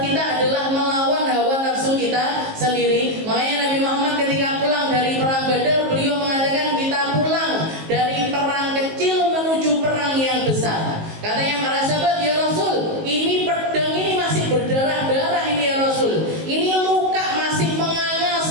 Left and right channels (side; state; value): left; late; 19 ms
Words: kita adalah melawan hawa nafsu kita sendiri. Makanya Nabi Muhammad ketika pulang dari perang Badar, beliau mengatakan kita pulang dari perang kecil menuju perang yang besar. Katanya para sahabat, ya Rasul, ini pedang ini masih berdarah-darah ini ya Rasul. Ini luka masih menganga